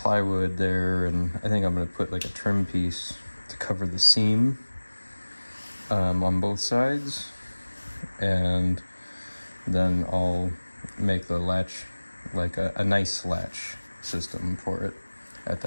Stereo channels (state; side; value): inverted; both; correlation -1.00